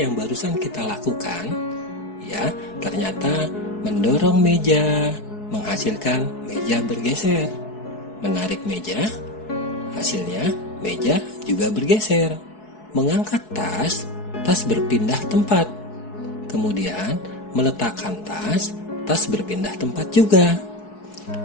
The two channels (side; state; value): right; late; 4.7 ms